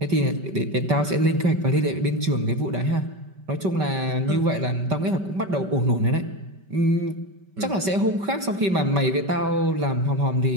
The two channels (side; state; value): left; late; 5.2 ms